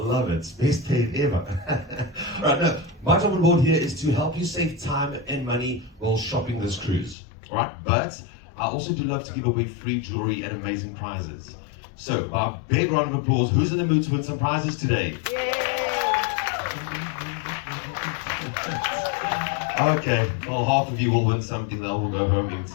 it. Best paid ever. All right, now, my job on board here is to help you save time and money while shopping this cruise. All right, but I also do love to give away free jewelry and amazing prizes. So, by a big round of applause, who's in the mood to win some prizes today? Okay, well, half of you will win something that will go home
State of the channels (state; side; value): drops out; right; at 7.2 s